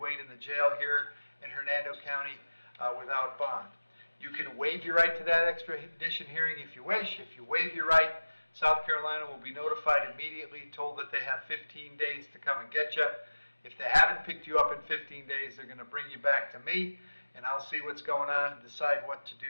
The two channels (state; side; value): inverted; both; correlation -1.00